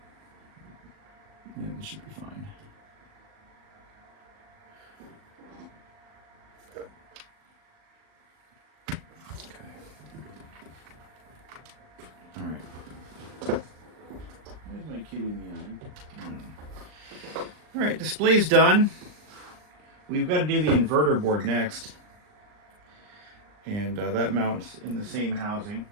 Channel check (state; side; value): late; left; 39 ms